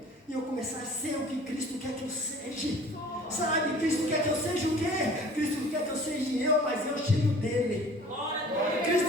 e eu começar a ser o que Cristo quer que eu seja. Sabe, Cristo quer que eu seja o quê? Cristo quer que eu seja eu, mas eu cheio dele.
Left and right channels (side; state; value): both; normal; correlation 0.47